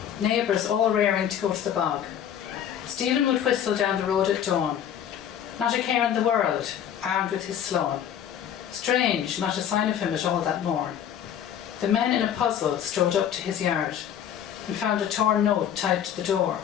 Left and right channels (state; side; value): quieter; right; 9.6 dB